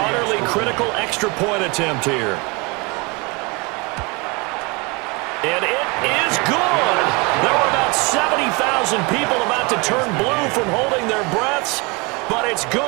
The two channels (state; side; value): quieter; left; 28.1 dB